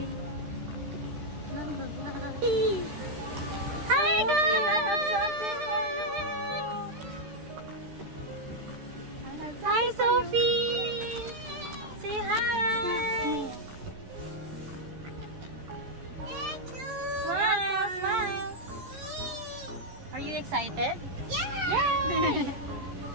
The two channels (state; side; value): late; left; 13 ms